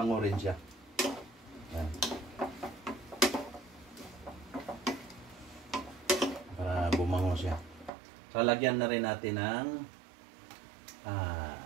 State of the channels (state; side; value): drops out; left; at 7.9 s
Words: rin siya. Ayan. Para bumango siya. So, lagyan na rin natin ng